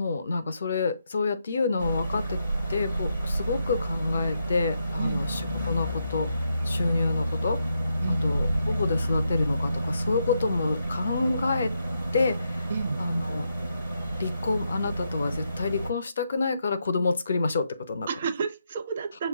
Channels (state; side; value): inverted; both; correlation -0.81